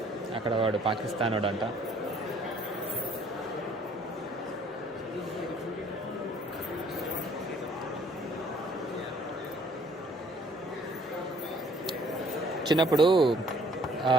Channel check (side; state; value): both; normal; correlation 0.60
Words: అక్కడ వాడు పాకిస్తాన్ వాడు అంట. చిన్నప్పుడు